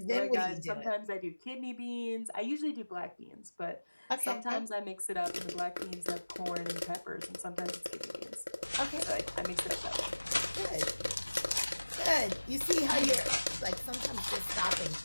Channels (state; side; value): inverted; both; correlation -1.00